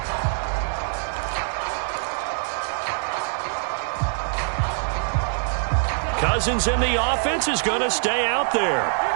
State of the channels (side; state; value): left; silent; digital silence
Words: Cousins in the offense is going to stay out there.